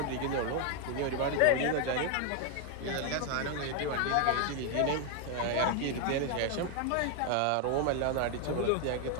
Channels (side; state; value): both; different; correlation 0.01